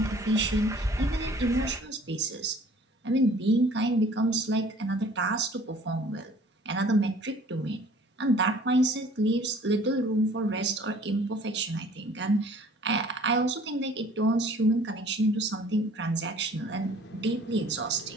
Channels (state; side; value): normal; both; correlation 0.52